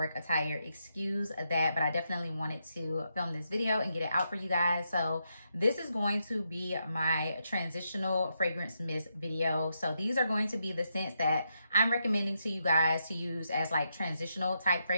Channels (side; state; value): both; inverted; correlation -0.82